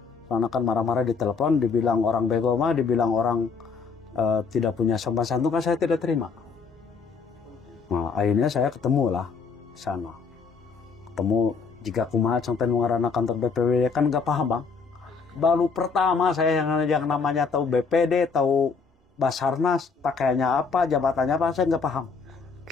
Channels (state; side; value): quieter; right; 5.2 dB